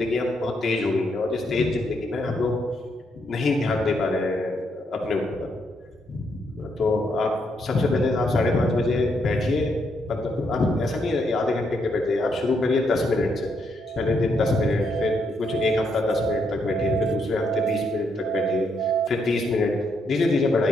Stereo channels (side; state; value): both; normal; correlation 0.76